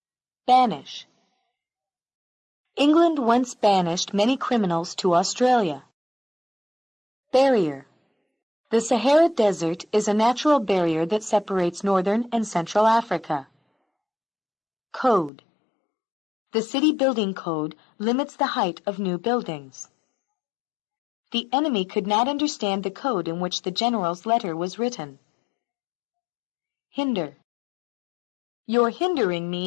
Banish. England once banished many criminals to Australia. Barrier. The Sahara Desert is a natural barrier that separates northern and central Africa. Code. The city building code limits the height of new buildings. The enemy could not understand the code in which the general's letter was written. Hinder. You're hindering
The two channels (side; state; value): right; drops out; at 15.3 s